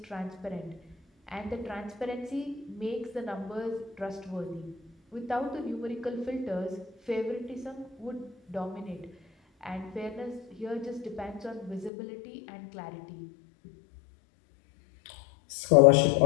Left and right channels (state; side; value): drops out; right; at 11.9 s